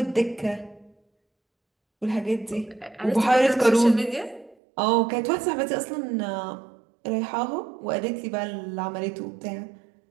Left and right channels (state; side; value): drops out; left; at 4.5 s